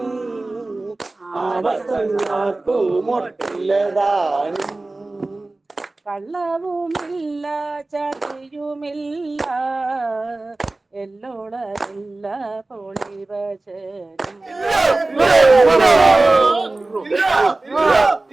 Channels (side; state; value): left; quieter; 3.0 dB